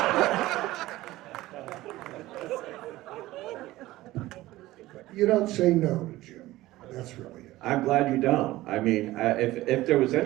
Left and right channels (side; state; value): left; quieter; 17.1 dB